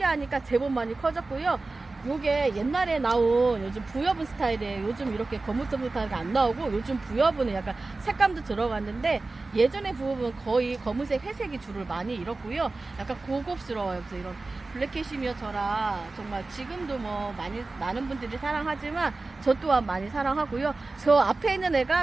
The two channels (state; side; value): quieter; left; 3.4 dB